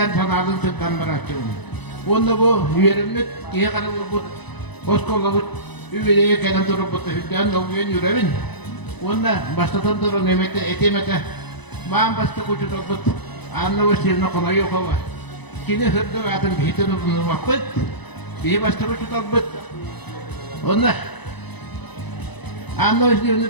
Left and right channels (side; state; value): right; late; 1.0 ms